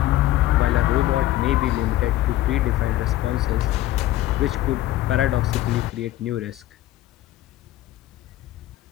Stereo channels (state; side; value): quieter; right; 14.7 dB